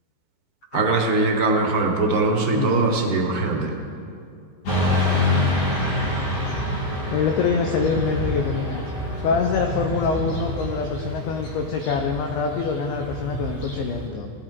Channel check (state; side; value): late; right; 15 ms